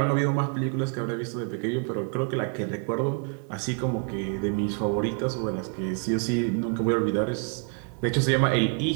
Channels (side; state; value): left; quieter; 38.6 dB